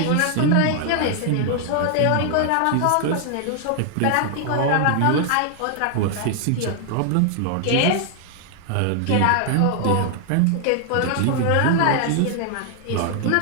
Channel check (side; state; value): both; different; correlation 0.00